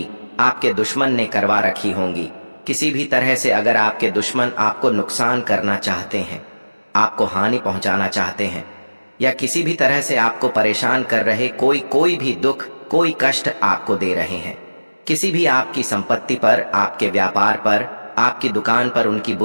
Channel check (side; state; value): both; inverted; correlation -1.00